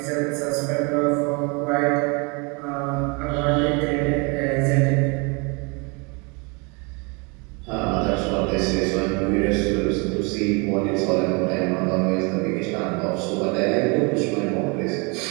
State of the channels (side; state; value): left; quieter; 30.9 dB